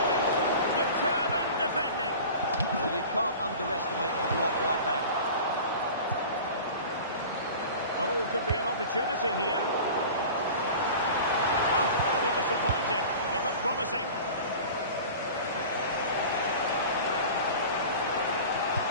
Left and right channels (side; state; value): both; inverted; correlation -0.38